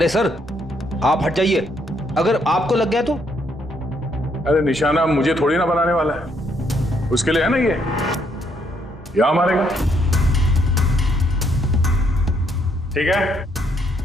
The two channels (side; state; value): both; normal; correlation 0.72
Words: सर, आप हट जाइए। अगर आपको लग गया तो? अरे निशाना मुझे थोड़ी ना बनाने वाला है, उसके लिए है ना ये। यहां मारेगा। ठीक है,